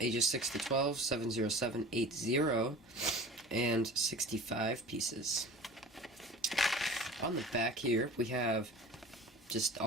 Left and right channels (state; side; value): normal; both; correlation 0.39